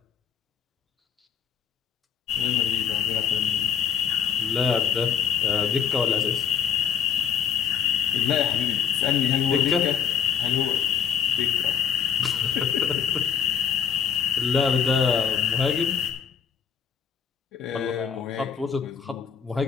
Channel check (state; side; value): quieter; right; 7.8 dB